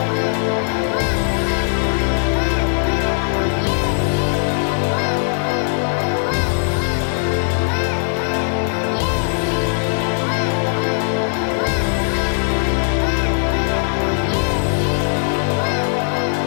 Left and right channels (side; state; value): right; silent; digital silence